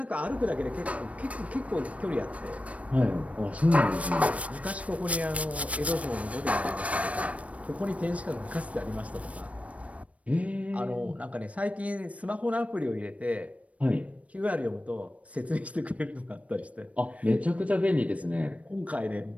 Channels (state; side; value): late; left; 0.065 ms